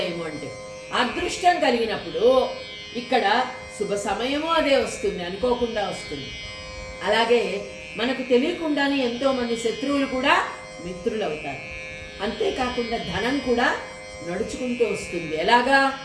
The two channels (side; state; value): both; identical; correlation 1.00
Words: అంటే అదృష్టం కలిగినప్పుడు ఇక్కడ శుభ సమయము అదే వస్తుంది, అనుకోకుండా వస్తుంది. అలాగే మనకు తెలియకుండానే ఎంతోమంది శత్రువులు కూడా మిత్రులు అవుతారు. అంతేకాకుండా ధనం కూడా నడుచుకుంటూ వస్తుంది. ఎలాగా,